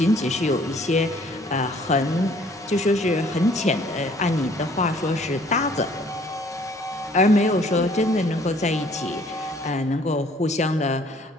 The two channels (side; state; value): both; normal; correlation 0.58